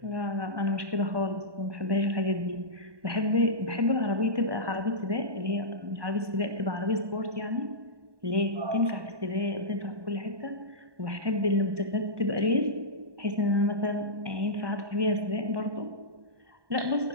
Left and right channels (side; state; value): left; late; 1.2 ms